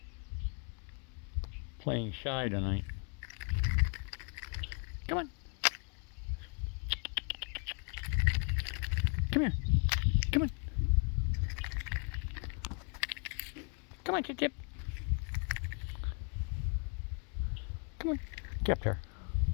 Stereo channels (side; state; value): right; quieter; 37.1 dB